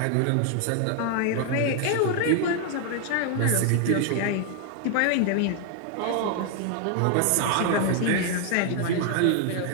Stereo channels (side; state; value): both; different; correlation 0.00